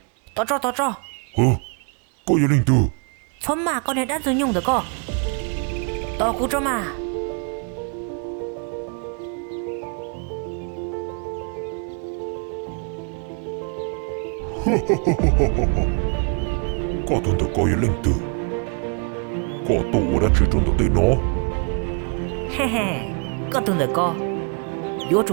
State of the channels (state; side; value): quieter; left; 37.6 dB